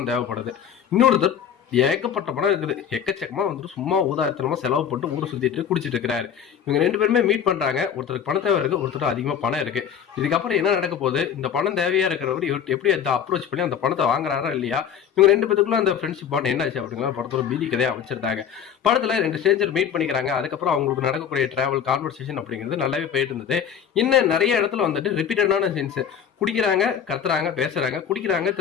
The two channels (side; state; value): right; quieter; 8.3 dB